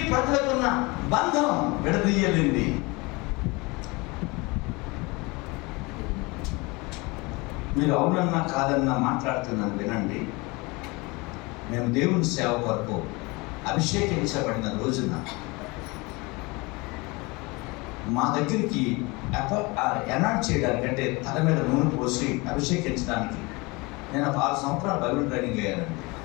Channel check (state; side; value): quieter; right; 25.4 dB